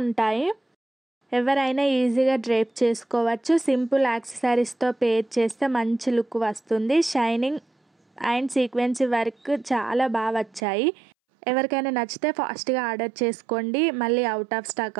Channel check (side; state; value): left; drops out; at 10.6 s